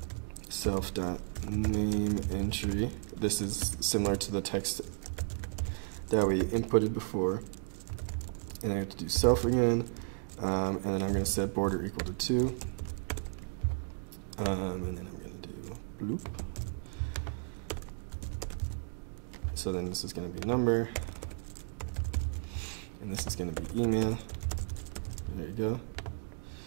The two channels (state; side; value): silent; left; digital silence